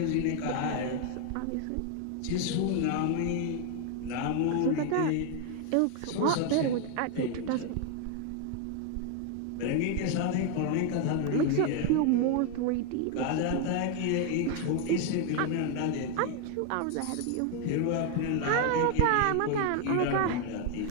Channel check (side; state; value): both; different; correlation 0.01